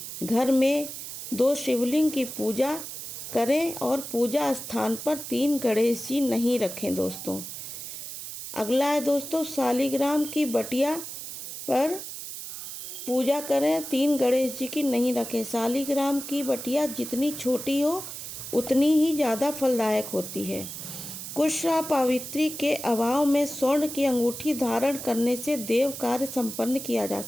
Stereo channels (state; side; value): noise; right; hiss, 9 dB below the sound